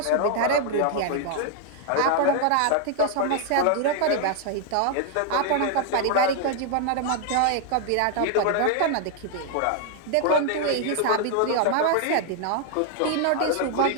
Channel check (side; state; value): both; different; correlation 0.00